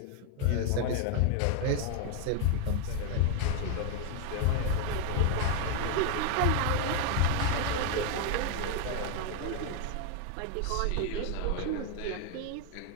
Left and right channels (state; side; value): different; both; correlation 0.00